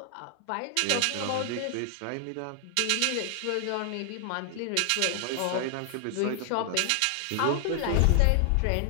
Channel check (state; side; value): different; both; correlation 0.00